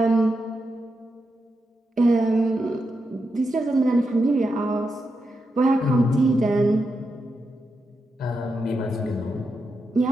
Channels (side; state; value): both; normal; correlation 0.86